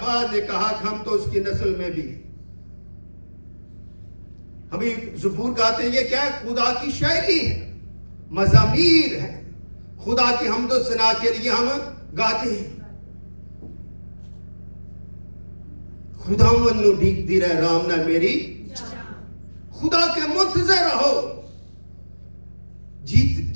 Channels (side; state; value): both; inverted; correlation -1.00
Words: بعد نے کہا کہ ہم تو اس کی نسل میں بھی. ہم زبور گاتے ہیں, یہ کیا ہے؟ خدا کی شاعری ہے, مزامیر ہے, خدا کی حمد و ثنا کے لیے ہم گاتے ہیں. خدا منو ڈھیک دی رہے رام نہ میری, خدا کے منتظر رہو.